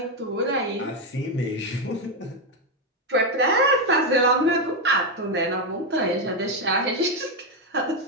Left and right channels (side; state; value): both; normal; correlation 0.07